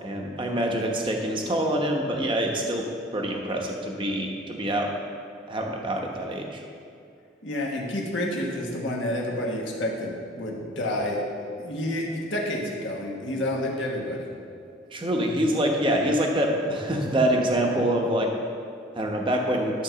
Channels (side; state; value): both; normal; correlation 0.46